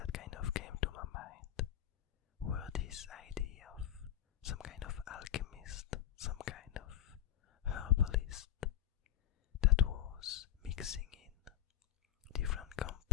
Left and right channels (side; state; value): right; quieter; 11.9 dB